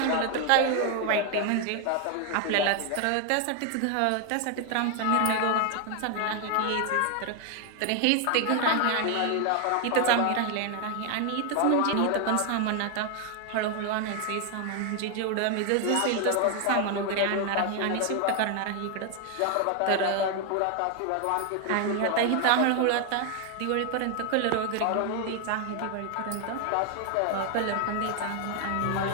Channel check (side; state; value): both; different; correlation 0.00